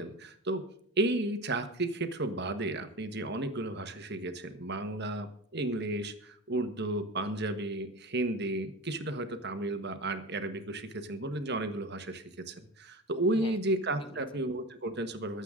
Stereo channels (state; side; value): normal; both; correlation 0.29